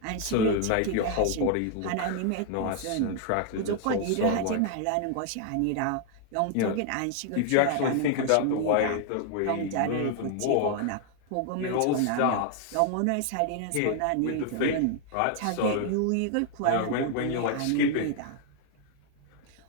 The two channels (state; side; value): different; both; correlation 0.00